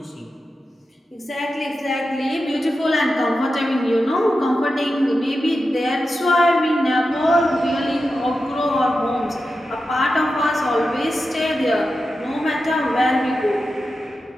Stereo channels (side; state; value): both; normal; correlation 0.91